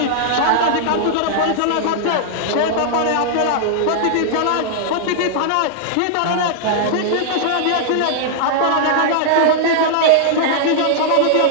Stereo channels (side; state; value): both; different; correlation -0.01